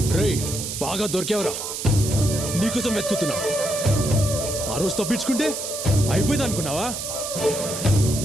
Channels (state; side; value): noise; right; hiss, 5 dB below the sound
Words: రేయ్, బాగా దొరికేవరా? నీకోసం వెతుకుతున్నా. ఆ రోజు తప్పించుకుంటే అయిపోయింది అనుకున్నావా?